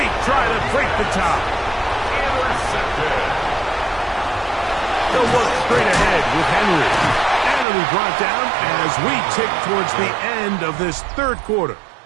try to break the tie. Intercepted. They'll look straight ahead with Henry. And it'll be brought down as we tick towards the end of this third quarter.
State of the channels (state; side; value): drops out; left; at 7.7 s